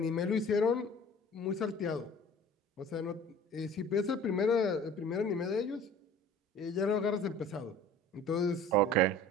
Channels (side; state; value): both; normal; correlation 0.45